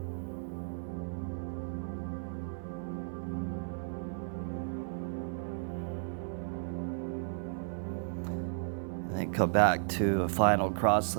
And then come back to a final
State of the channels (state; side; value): silent; left; 55 dB below the other